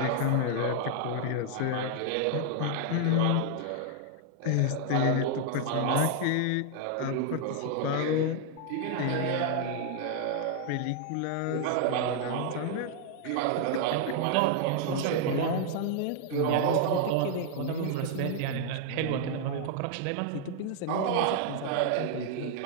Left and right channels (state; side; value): different; both; correlation 0.00